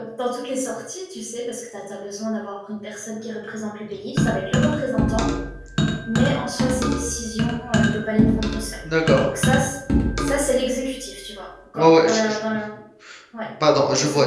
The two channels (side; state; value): both; identical; correlation 1.00